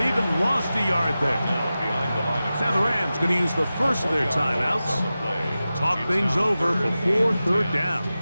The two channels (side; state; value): both; inverted; correlation -0.94